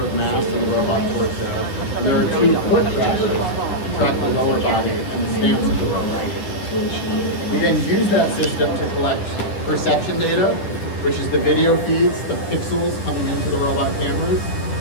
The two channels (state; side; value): late; right; 10 ms